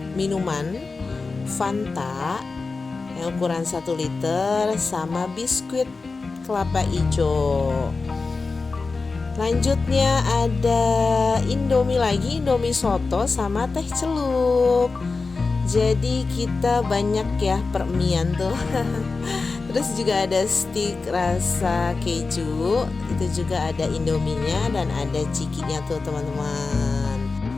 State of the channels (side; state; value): right; quieter; 4.1 dB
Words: minuman Fanta yang ukuran 1 liter sama biskuit kelapa hijau. Lanjutnya ada indomie lagi, indomie soto sama teh celup. Jadi kita banyak ya permian tuh. Terus juga ada stik rasa keju, itu juga ada indominya dan ada cikinya tuh teman-teman.